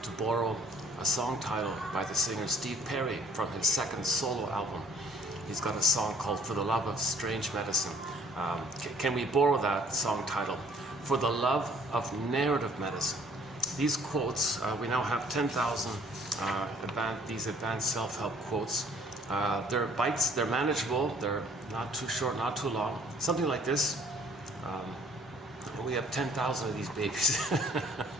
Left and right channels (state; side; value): normal; both; correlation 0.59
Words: to borrow a song title by the singer Steve Perry from his second solo album. He's got a song called For the Love of Strange Medicine. Can we borrow that song title? For the Love of Narrative Medicine. These quotes, we now have 10,000 these advanced self-help quotes. They're bites, they're manageable, they're not too short, not too long. Something like this. And we have 10,000 of these babies.